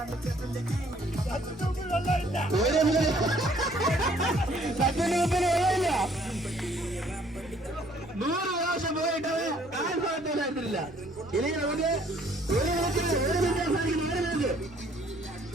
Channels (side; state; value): right; noise; rumble, 23 dB below the sound